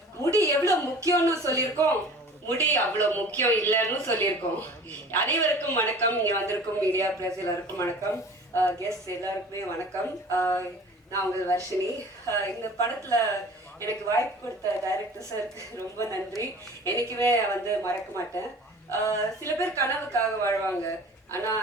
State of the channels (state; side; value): normal; both; correlation 0.44